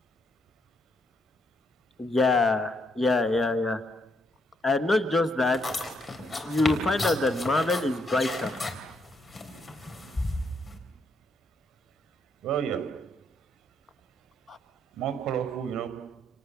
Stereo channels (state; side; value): normal; both; correlation 0.75